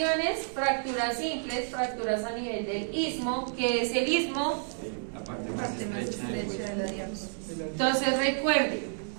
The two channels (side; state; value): left; silent; digital silence